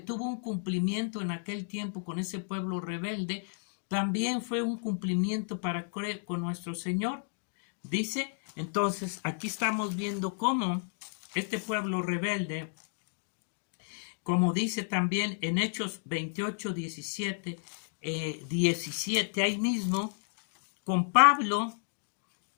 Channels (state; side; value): silent; right; digital silence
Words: un cumplimiento en aquel tiempo con ese pueblo rebelde, también fue un cumplimiento para creer con nuestro Señor. Dice, entonces, aquí estamos viendo cómo este pueblo rebelde, como dice también en Hechos 28, 17, 17, ahí mismo, con Pablo,